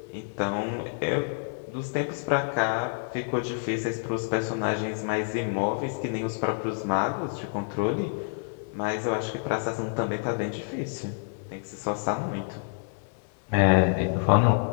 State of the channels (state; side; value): silent; right; digital silence